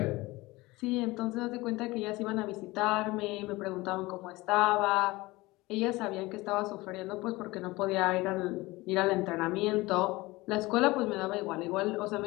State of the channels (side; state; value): right; quieter; 20.9 dB